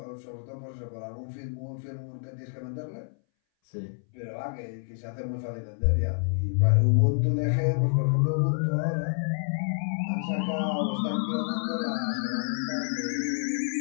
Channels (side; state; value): right; silent; 59 dB below the other